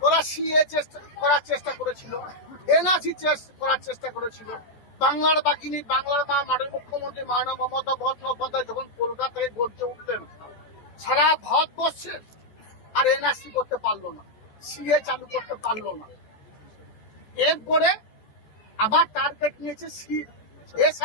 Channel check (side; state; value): right; late; 14 ms